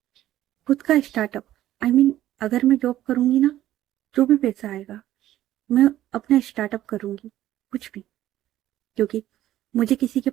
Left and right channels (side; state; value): left; quieter; 13.4 dB